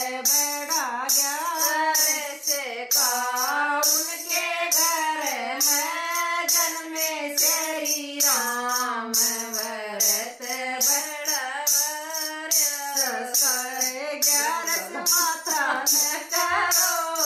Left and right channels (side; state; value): both; identical; correlation 1.00